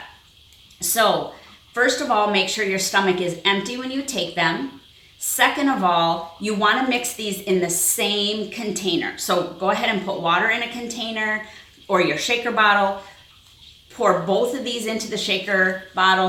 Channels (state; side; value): identical; both; correlation 1.00